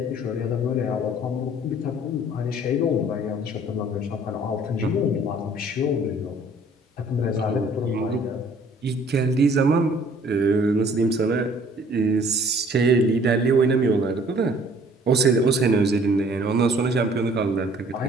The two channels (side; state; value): both; normal; correlation 0.56